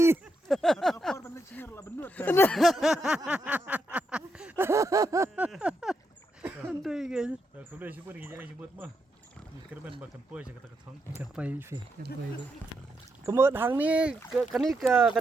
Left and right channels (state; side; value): normal; both; correlation 0.82